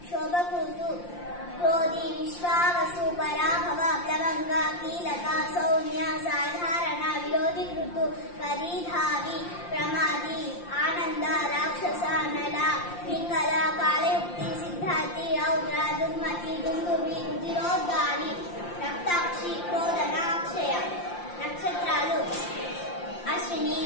शोभकुर्तु क्रोधी विश्वावसु पराभव प्लवंगा कीलका सौम्या साधारण विरोधि कृतु परिधावी प्रमादी आनंद राक्षस नला पिंगल कालयुक्ति सिद्धार्थी रौद्र दुर्मति दुंदुभि रुधिरोद्गारी रक्ताक्षी क्रोधनाक्षय नक्षत्रालु अश्विनी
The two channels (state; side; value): late; right; 5.7 ms